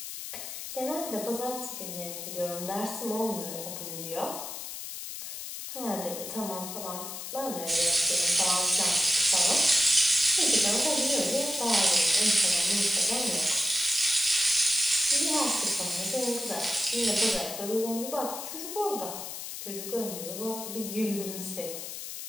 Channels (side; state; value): left; noise; hiss, 8 dB below the sound